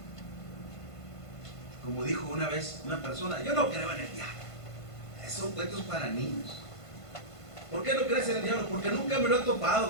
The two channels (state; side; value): late; right; 1.5 ms